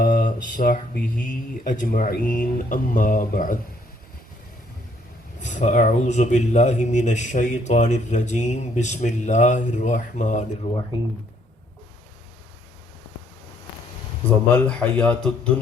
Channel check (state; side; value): normal; both; correlation 0.66